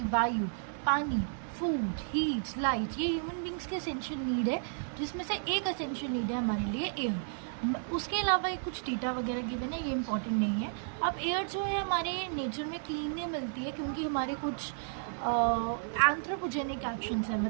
वायु, पानी, फूड, हीट, लाइट, ये ह्यूमन बींग्स के एसेंशियल नीड है, जिसमें से एक एसेंशियल नीड है हमारे लिए एयर। उसके अलावा एक कुछ डेटा वगैरह गिवन है, ये इंपॉर्टेंट नहीं है। अब एयर जो है हमारे नेचर में क्लीन नहीं मिलती है क्योंकि हमारे कुछ एंथ्रोपोजेनिक एक्शंस है,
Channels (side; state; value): left; silent; 56 dB below the other